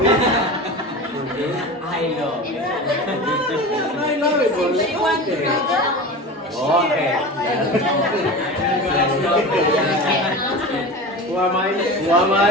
I know. I love it. Okay. Who am I? Who am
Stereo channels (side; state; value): both; normal; correlation 0.30